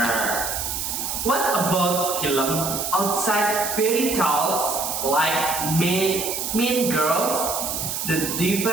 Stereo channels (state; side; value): noise; right; hiss, 3 dB below the sound